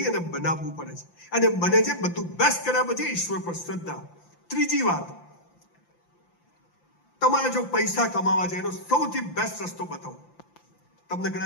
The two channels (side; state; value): right; late; 5.8 ms